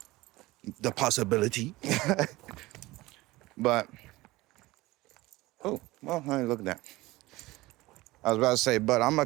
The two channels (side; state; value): left; quieter; 19.7 dB